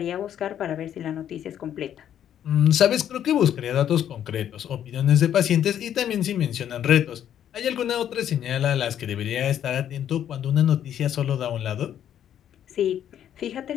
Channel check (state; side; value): quieter; right; 10.2 dB